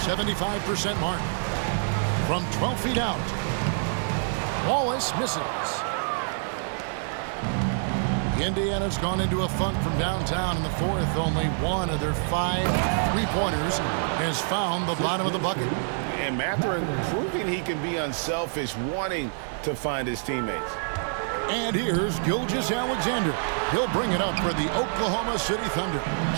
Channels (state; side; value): silent; left; digital silence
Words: 75% mark. From 12 feet out, Wallace misses. Indiana's gone into a funk from downtown in the fourth. Only one of their 5 three-pointers has found the bottom of the bucket. And Mathurin proving he can be unselfish, wanting to find his teammates. And here's Gilgeous-Alexander. He'll bring it up for the Oklahoma City Thunder.